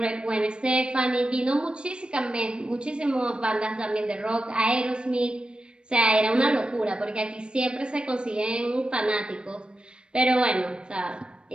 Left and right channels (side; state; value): left; late; 0.054 ms